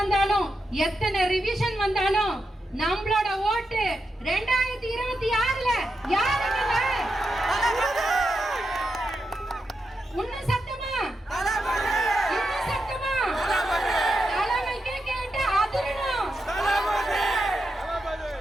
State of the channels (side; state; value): both; normal; correlation 0.87